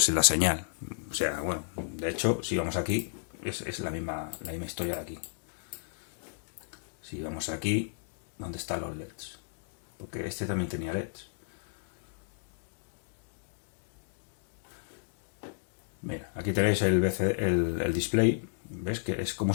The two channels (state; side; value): silent; right; digital silence